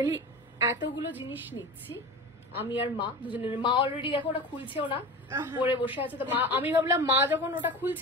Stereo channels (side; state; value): both; normal; correlation 0.31